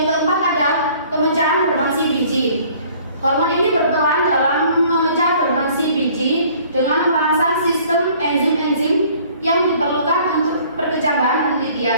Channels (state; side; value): inverted; both; correlation -0.55